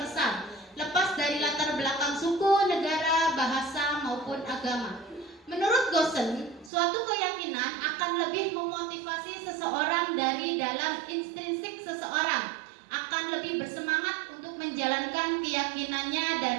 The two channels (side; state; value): left; drops out; at 6.7 s